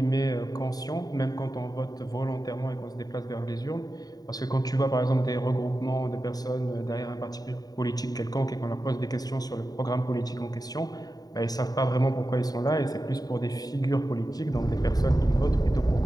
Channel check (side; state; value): right; late; 0.18 ms